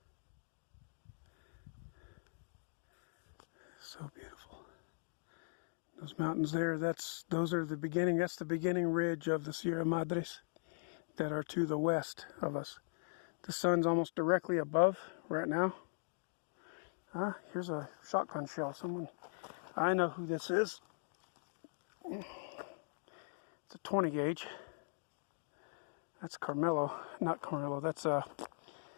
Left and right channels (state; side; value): silent; right; digital silence